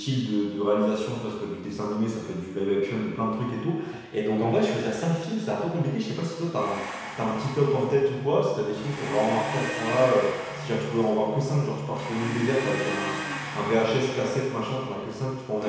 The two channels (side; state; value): both; identical; correlation 1.00